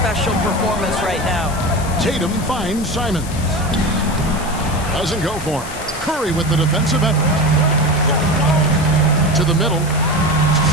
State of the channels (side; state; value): left; noise; hiss, 14 dB below the sound